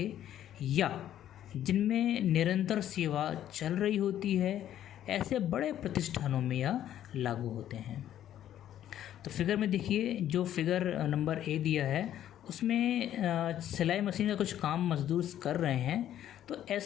या जिनमें निरंतर सेवा चल रही होती है, ऐसे बड़े प्रतिष्ठानों में यह लागू होते हैं। तो फिगर में देखिए, जो फिगर नंबर ए दिया है उसमें सिलाई मशीन का कुछ काम मजदूर कर रहे हैं। तो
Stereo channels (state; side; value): quieter; right; 11.4 dB